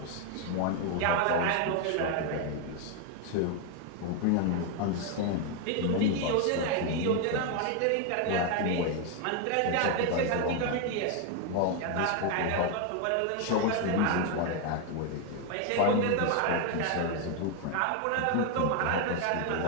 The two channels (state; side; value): different; both; correlation 0.01